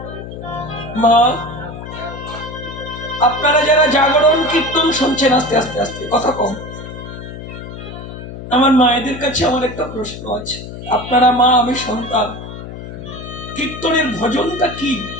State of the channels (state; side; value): noise; left; hum, 11 dB below the sound